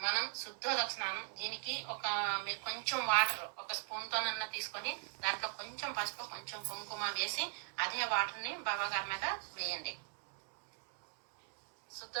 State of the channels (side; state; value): left; silent; 51 dB below the other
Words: శుద్ధోదక స్నానం. దీనికి మీరు కొంచెం వాటర్ ఒక స్పూన్తోనన్నా తీసుకొని దాంట్లో కొంచెం పసుపు కొంచెం కుంకుమ వేసి అదే వాటర్ని బాబా గారి మీద వేయండి.